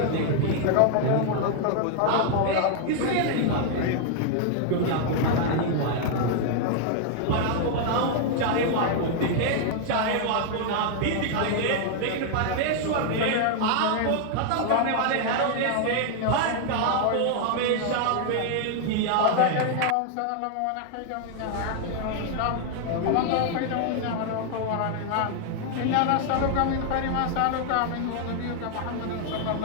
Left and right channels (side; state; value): both; different; correlation 0.00